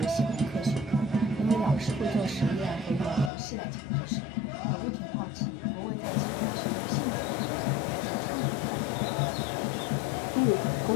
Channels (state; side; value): drops out; right; at 3.3 s